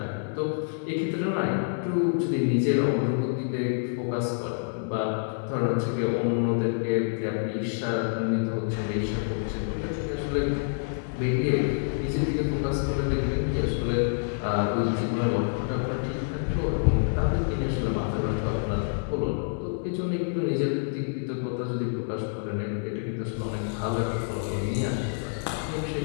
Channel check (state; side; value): silent; right; 57 dB below the other